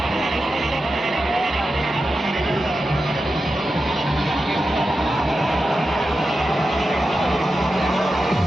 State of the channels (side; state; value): both; normal; correlation 0.91